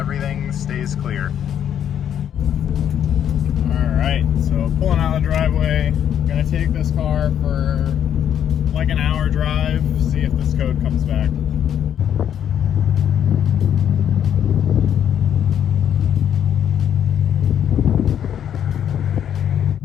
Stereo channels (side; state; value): right; quieter; 9.5 dB